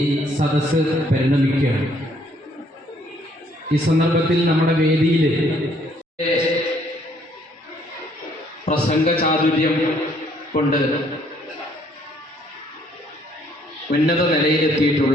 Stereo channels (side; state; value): both; normal; correlation 0.65